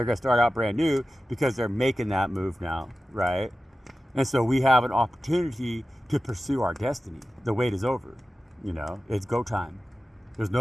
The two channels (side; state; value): both; normal; correlation 0.94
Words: going to start out brand new because they're making that move now, right? And so we have an opportunity to pursue our destiny. The wait is over, you know, it's go time. There's